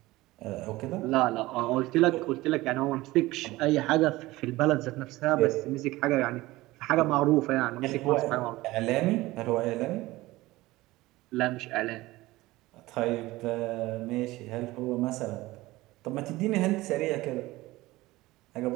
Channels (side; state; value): left; quieter; 18.9 dB